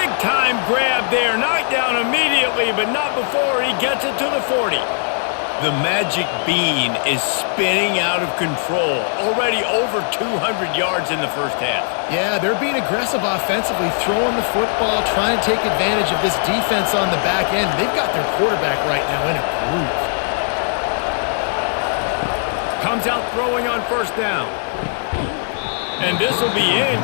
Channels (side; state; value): right; silent; digital silence